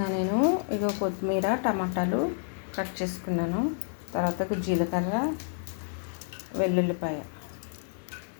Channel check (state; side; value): silent; right; 58 dB below the other